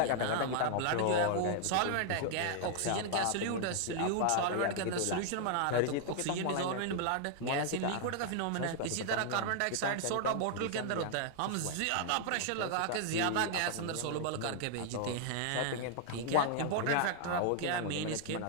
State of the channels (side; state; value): both; different; correlation 0.00